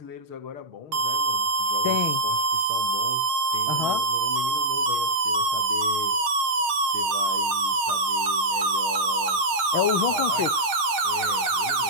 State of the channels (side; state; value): left; late; 7.4 ms